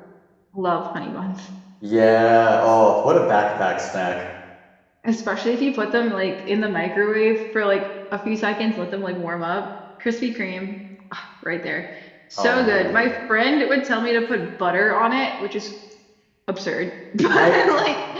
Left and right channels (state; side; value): identical; both; correlation 1.00